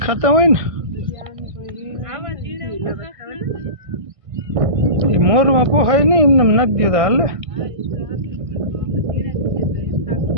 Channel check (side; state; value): left; late; 1.5 ms